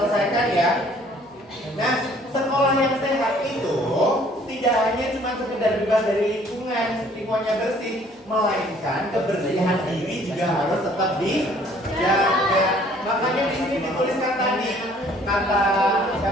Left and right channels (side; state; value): both; normal; correlation 0.58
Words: ya. Nah, sekolah yang sehat itu tidak hanya cuma sekedar bebas dari lingkungannya bersih, melainkan kebersihan diri juga harus tetap dijaga. Makanya di sini dituliskan tadi kata